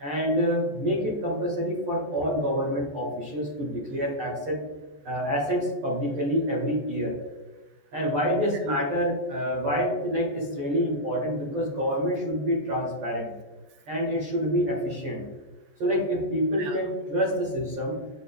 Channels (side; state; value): left; late; 14 ms